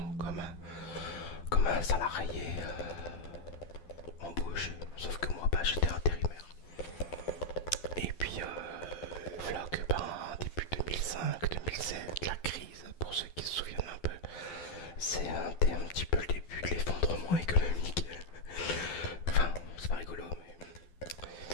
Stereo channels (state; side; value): late; right; 12 ms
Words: comme un salarié embauché. Sauf que moi, bah, j'étais intérimaire. Et puis, voilà que ben, début 2005-2007, la crise, pour ceux qui se souviennent un peu, c'était un petit peu le début de l'effondrement économique. Enfin, c'est pas rigolo,